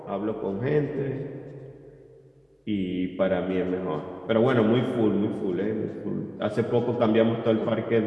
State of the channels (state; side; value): identical; both; correlation 1.00